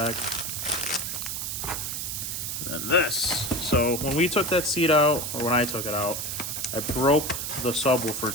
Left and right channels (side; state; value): right; noise; hiss, 4 dB below the sound